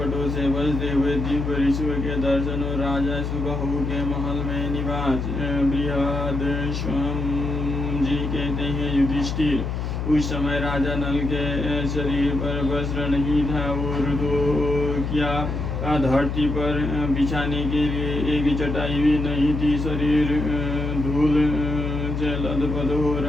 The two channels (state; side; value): noise; left; hum, 3 dB below the sound